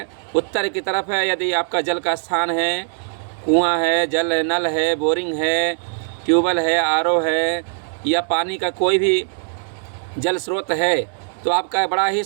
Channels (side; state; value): left; silent; 65 dB below the other